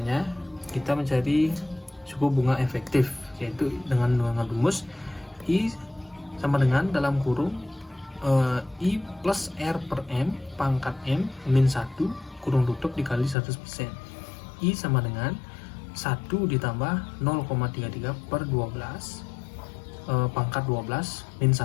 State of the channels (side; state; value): right; drops out; at 13.4 s